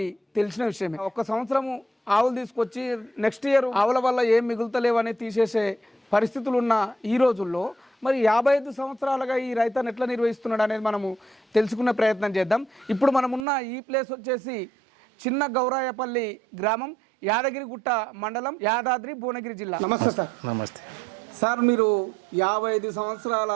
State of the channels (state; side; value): drops out; left; at 13.5 s